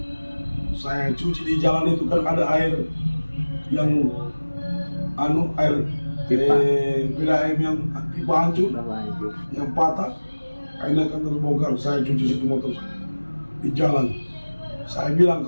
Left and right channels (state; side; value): inverted; both; correlation -1.00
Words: Saya cuci di jalan itu kan ada air yang bila air yang pipa hancur, yang patah, airnya kan terbongkar. Saya cuci situ motor saya di jalan. Saya bilang